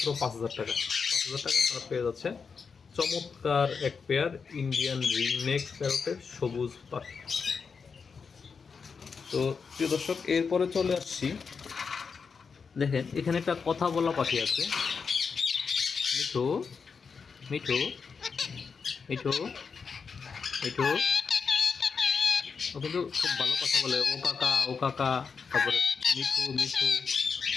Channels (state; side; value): quieter; right; 5.6 dB